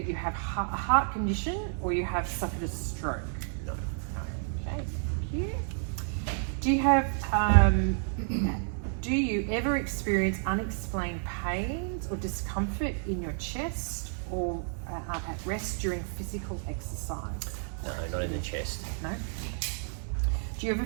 you have a heart condition or you have suffered a stroke? No. No. Okay, thank you. Do you ever experience unexplained pains or discomfort in your chest or at rest during physical exercise? No, not in the chest. No. Do you ever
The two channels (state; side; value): silent; left; 57 dB below the other